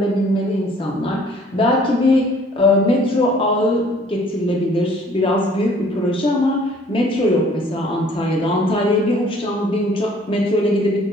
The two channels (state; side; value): normal; both; correlation 0.56